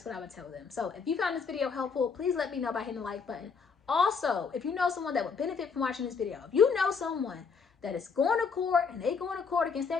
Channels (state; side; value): quieter; right; 5.6 dB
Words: what I would tell them. So if you found this video helpful, please let me know by hitting the like button. Also, if you know someone that would benefit from watching this video, if you know someone that is going to court and they going to court against